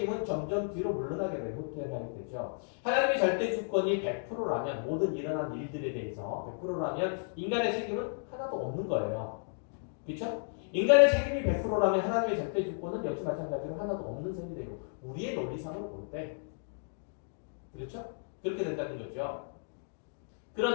점점 뒤로 물러나게 되고 후퇴하게 되죠. 하나님의 절대 주권이 100%라면 모든 일어난 일들에 대해서 100%라면 인간의 책임은 하나도 없는 거예요. 그렇죠? 인간의 책임이 100%라면 하나님의 절대 주권은 역시 마찬가지로 하나도 없는 셈이 되고 우리의 논리상으로 볼 때 그렇죠? 그렇게 된다는 거죠.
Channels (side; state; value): right; silent; digital silence